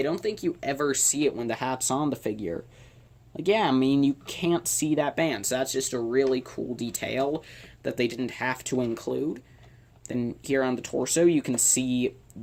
don't think you ever see it when the hat's on the figure. Yeah, you can't see that band, so that's just a really cool detail that they didn't have to include. Then here on the torso, you can see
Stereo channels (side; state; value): both; identical; correlation 1.00